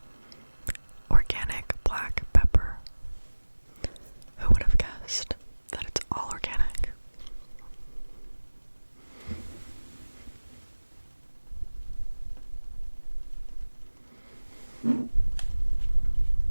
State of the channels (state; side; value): inverted; both; correlation -1.00